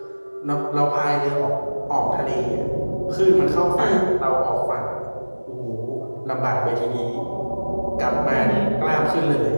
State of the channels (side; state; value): both; inverted; correlation -1.00